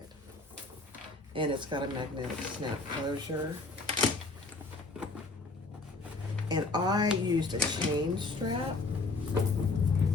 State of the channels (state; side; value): quieter; right; 3.4 dB